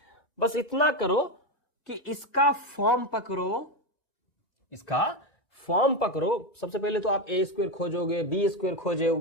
बस इतना करो कि इसका फॉर्म पकड़ो, इसका फॉर्म पकड़ो। सबसे पहले तो आप ए स्क्वायर खोजोगे, बी स्क्वायर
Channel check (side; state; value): right; late; 1.9 ms